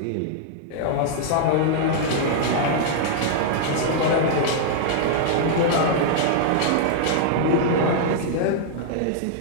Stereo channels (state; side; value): different; both; correlation -0.01